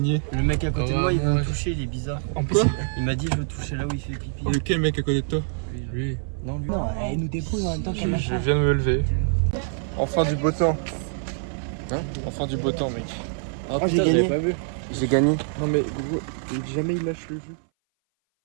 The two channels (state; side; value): silent; left; 59 dB below the other